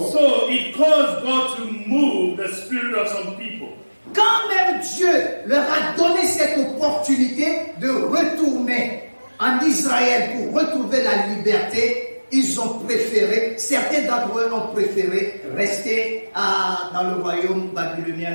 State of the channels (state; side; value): inverted; both; correlation -1.00